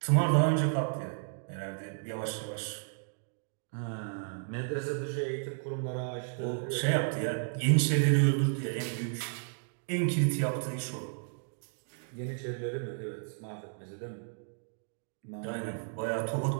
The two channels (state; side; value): silent; left; digital silence